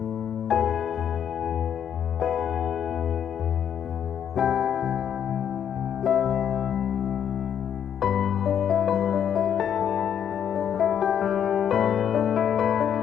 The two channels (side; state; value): right; quieter; 8.9 dB